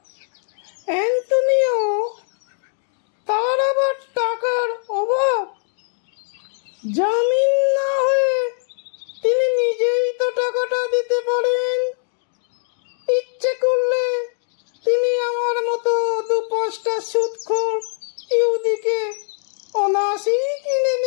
অ্যান্তনিও, তার আবার টাকার অভাব? জামিন না হয়ে তিনি নিজেই তো টাকাটা দিতে পারেন। ইচ্ছে করলে তিনি আমার মতো 2-5টা সুদখোর ইহুদিকে অনায়াসেই কিনে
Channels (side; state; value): right; silent; digital silence